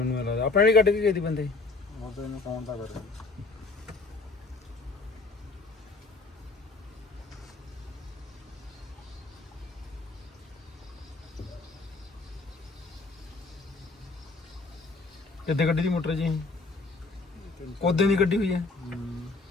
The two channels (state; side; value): quieter; right; 3.6 dB